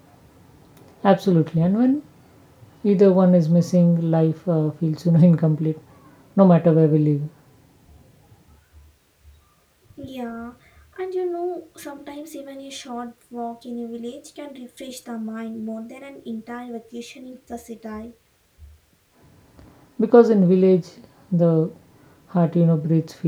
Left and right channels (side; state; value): both; identical; correlation 1.00